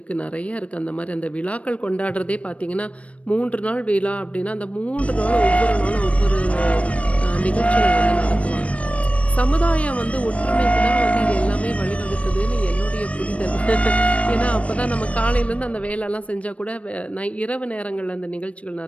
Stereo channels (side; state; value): right; late; 0.064 ms